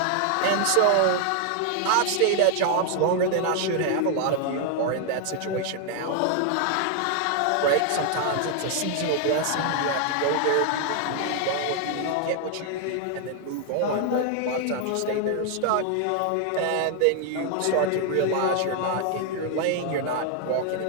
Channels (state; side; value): different; both; correlation 0.00